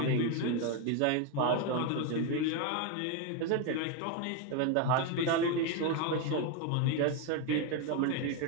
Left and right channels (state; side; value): different; both; correlation 0.01